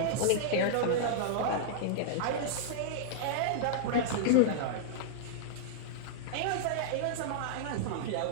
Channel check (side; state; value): both; different; correlation -0.02